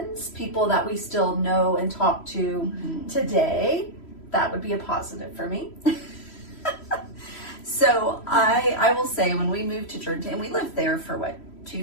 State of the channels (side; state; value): right; late; 3.1 ms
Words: people that we still know and talk to today. That would be a positive for me. So I will say when we moved to Jordanton, and we lived there for 2